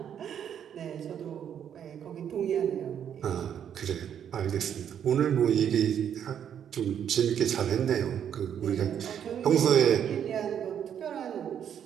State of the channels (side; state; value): left; quieter; 8.9 dB